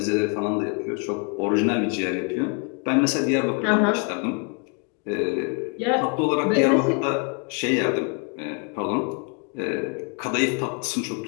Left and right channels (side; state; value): right; quieter; 36.5 dB